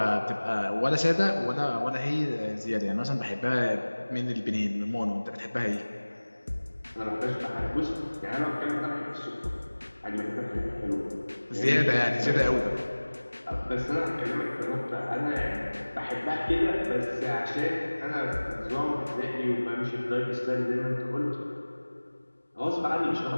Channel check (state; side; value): inverted; both; correlation -1.00